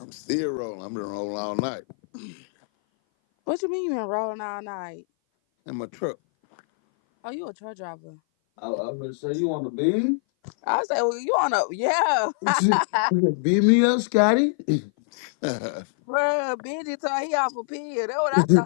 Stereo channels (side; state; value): right; silent; 58 dB below the other